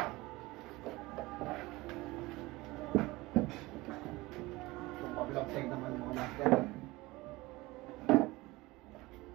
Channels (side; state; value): left; quieter; 20.9 dB